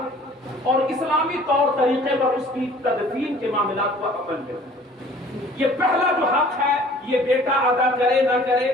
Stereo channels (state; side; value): normal; both; correlation 0.51